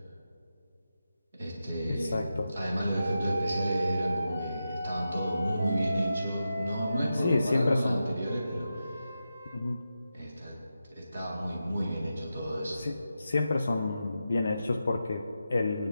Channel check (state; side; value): inverted; both; correlation -0.89